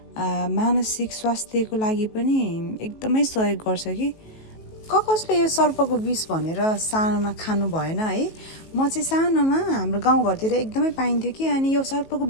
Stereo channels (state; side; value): late; right; 19 ms